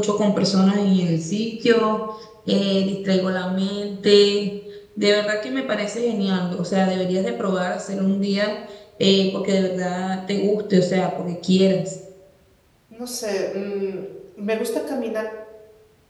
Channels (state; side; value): identical; both; correlation 1.00